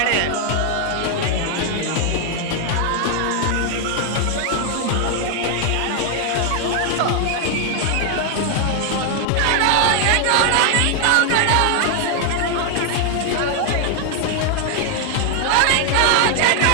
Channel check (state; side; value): different; both; correlation 0.00